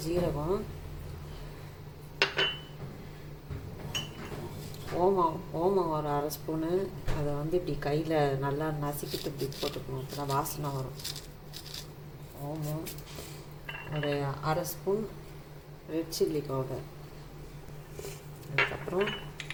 ஜீரகம், ஓமம் ஒரு அரை ஸ்பூனு. அதை இப்படி கையில் நல்லா நசுக்கிட்டு இப்படி போட்டுக்கணும், அப்போ தான் வாசனை வரும். ஓமம் ஒரு அரை ஸ்பூன், ரெட் சில்லி பவுடர். அதுக்கப்புறம்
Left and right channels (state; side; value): identical; both; correlation 1.00